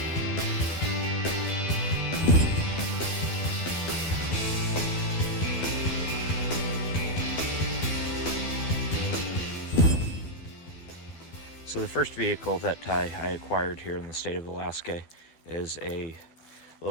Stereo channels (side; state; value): right; late; 12 ms